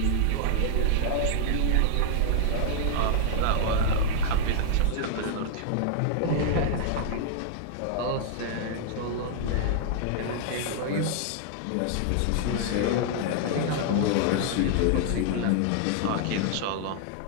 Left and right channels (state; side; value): different; both; correlation -0.01